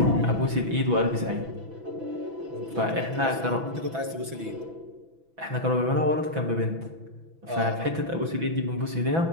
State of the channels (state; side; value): late; left; 6.1 ms